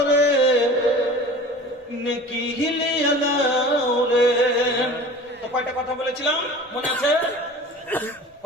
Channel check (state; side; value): normal; both; correlation 0.40